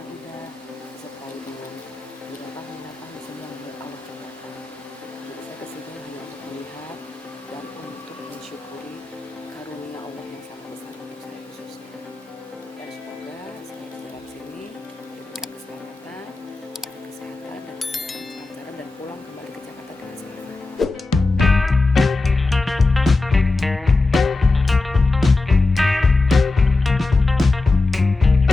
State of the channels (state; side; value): quieter; right; 3.4 dB